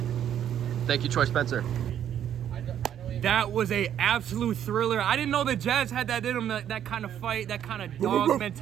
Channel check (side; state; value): left; quieter; 10.0 dB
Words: Thank you, Troy Spencer. That was a absolute thriller. I didn't know the Jazz had that in them, that kind of fight, that kind of dog